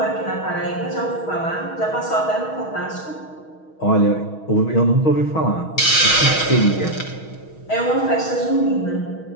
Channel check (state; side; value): late; right; 6.3 ms